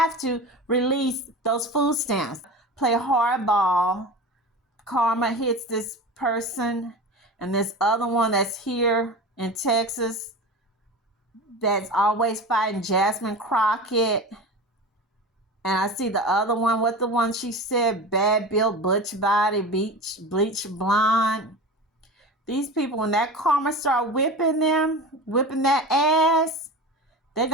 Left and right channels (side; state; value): both; normal; correlation 0.31